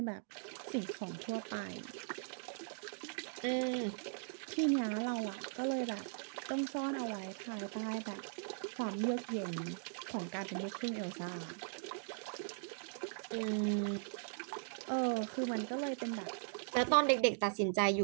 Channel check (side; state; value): left; silent; digital silence